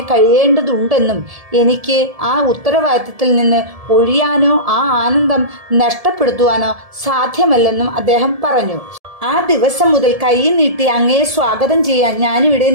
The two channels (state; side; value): late; left; 1.7 ms